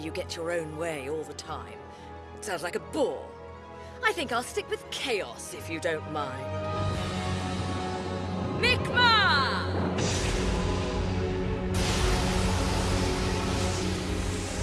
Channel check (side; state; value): both; identical; correlation 1.00